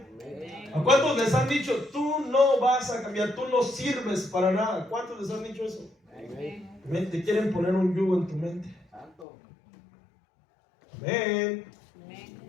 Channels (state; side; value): drops out; right; at 9.2 s